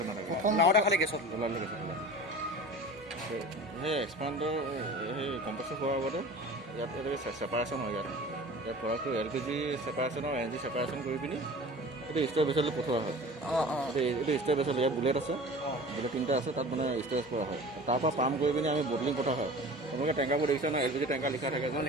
নাথাকে প্ৰথম নাওটা খালি গেছত ওলালে গেছত ওলায় সেই এক্সপাণ্ডাৰ সেই কম্প্ৰেছৰ হোৱাৰ আগতে ইয়াত এনেকৈ ছেপাৰেশ্যন হয় ইয়াত প্ৰডাক্টটো LPG ছেপাৰেশ্যন আৰু NG ছেপাৰেশ্যন কৰি পিনি এইটো ষ্ট'ৰ বেচলৈ পঠোৱা হয় এইটো ষ্ট'ৰ বেচল ইয়াত বুলেট আছে বুলেট 3টা আছে তাত মানে ষ্ট'ৰেজ কৰা হয় তাৰপৰা পাম্প কৰি পিনি আমি বটলিং পঠোৱা হয় আপোনালোকে টেংকাৰবোৰ দেখিছে ন LPG টেংকাৰ লিখা থাকে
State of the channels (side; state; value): both; normal; correlation 0.39